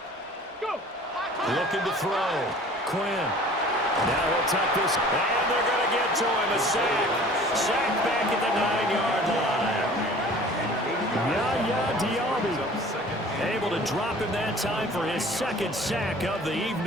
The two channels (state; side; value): normal; both; correlation 0.47